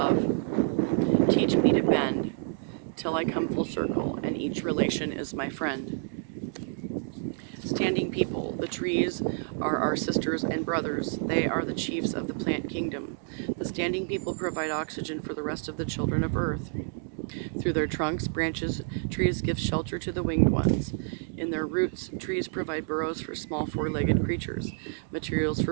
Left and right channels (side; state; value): left; silent; digital silence